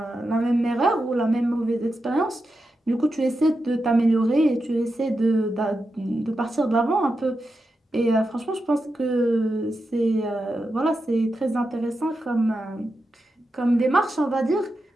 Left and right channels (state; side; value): normal; both; correlation 0.89